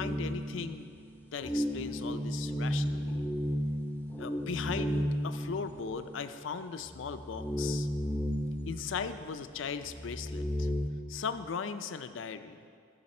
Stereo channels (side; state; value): both; normal; correlation 0.70